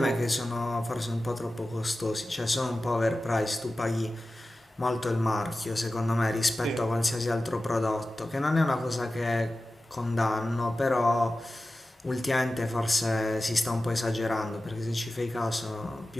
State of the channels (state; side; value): normal; both; correlation 0.95